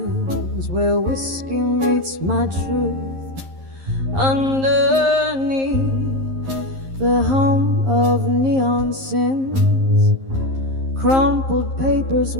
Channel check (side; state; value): left; late; 11 ms